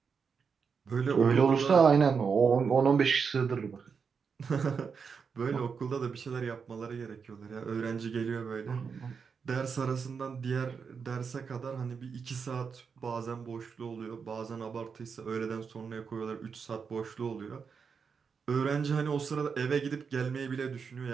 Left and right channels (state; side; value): quieter; left; 5.9 dB